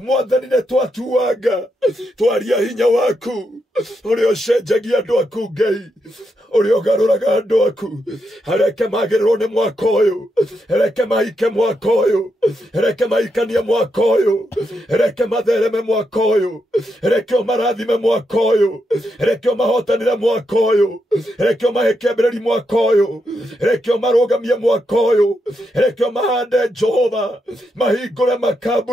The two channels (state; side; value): normal; both; correlation 0.83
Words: nĩ twatuanga twaria hinya waku, ũrĩa ũcenjagia andũ aku Ngai, ũrĩa ũgarũraga andũ aku. Reke magĩrĩrwo nĩ mwaka ũyũ, reke mahike mwaka ũyũ, reke mahikanie mwaka ũyũ, reke mathereme mwaka ũyũ, reke ũmarathime mwaka ũyũ, reke ũmahotanĩre mwaka ũyũ, reke ũmahe kĩambĩrĩria mwaka ũyũ, reke ũmarũgamie mwaka ũyũ, reke ũmahande Jehova, mahingũre